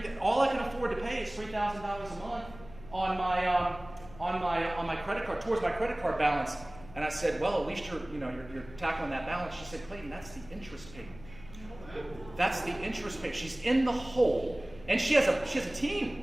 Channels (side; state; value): left; noise; hum, 18 dB below the sound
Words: all I can afford to pay is $3,000 a month on my credit card, towards my credit card balance. And I said, well, at least you're tackling that balance. She said, Clayton, that's the interest payment. That's the interest payment. She's in the hole, and she has a